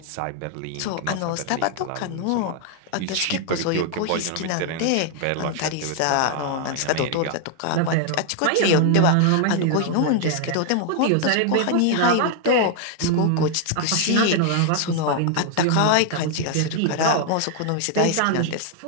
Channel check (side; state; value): both; different; correlation 0.00